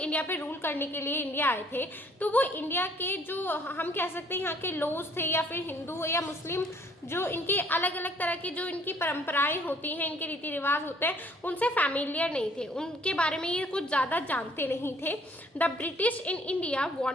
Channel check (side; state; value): both; normal; correlation 0.61